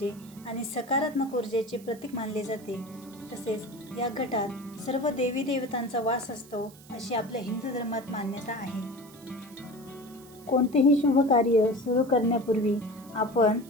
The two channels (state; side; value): noise; right; hiss, 23 dB below the sound